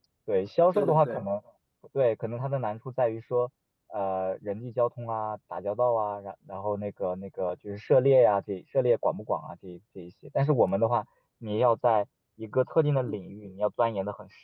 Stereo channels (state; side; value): identical; both; correlation 1.00